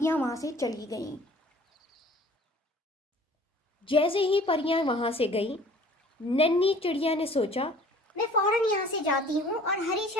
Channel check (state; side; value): normal; both; correlation 0.50